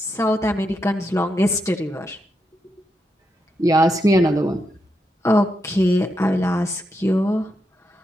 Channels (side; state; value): both; normal; correlation 0.83